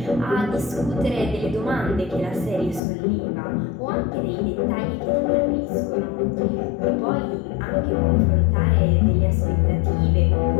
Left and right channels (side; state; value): right; drops out; at 2.8 s